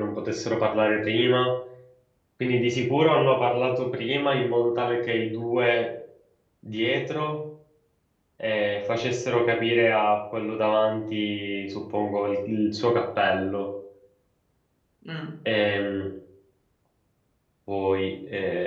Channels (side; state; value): both; identical; correlation 1.00